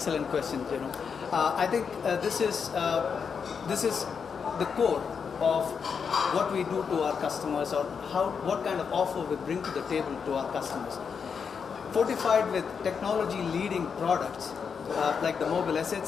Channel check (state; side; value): quieter; right; 6.3 dB